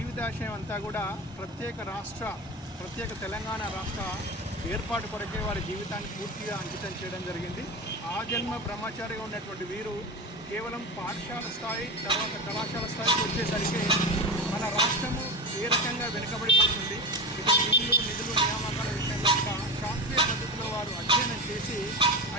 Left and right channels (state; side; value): normal; both; correlation 0.24